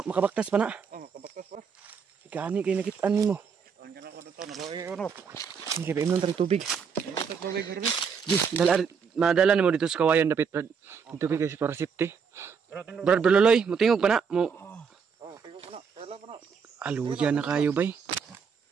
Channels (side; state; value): left; quieter; 6.2 dB